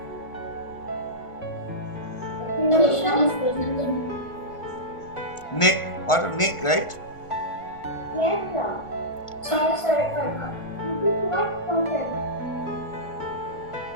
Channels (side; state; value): right; late; 1.5 ms